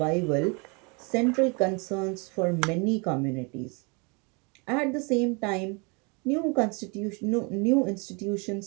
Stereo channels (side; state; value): left; quieter; 31.5 dB